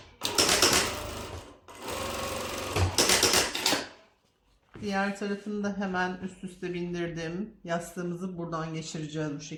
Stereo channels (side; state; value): both; identical; correlation 1.00